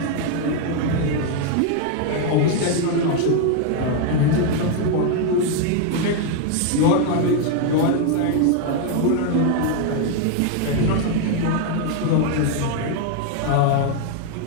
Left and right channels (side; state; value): both; different; correlation 0.01